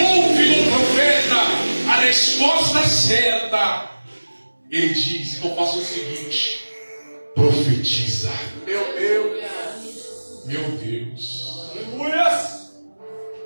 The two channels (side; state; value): both; inverted; correlation -1.00